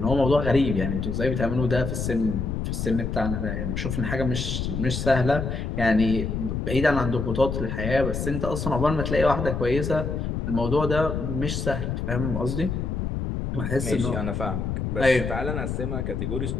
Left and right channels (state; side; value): noise; left; rumble, 2 dB below the sound